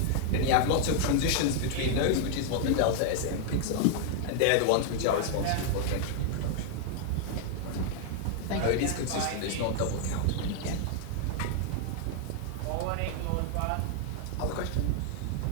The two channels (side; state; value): both; different; correlation 0.00